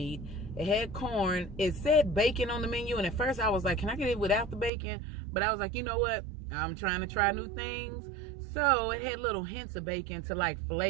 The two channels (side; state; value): left; drops out; at 4.7 s